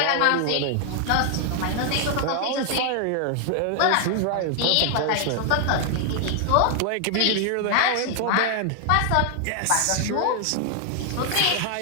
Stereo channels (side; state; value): both; different; correlation 0.00